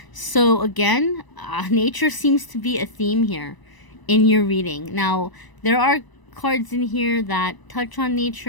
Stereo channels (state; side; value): late; right; 1.0 ms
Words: so again, nature seems to be a theme here in your reading. Now, there are cards in here that touch on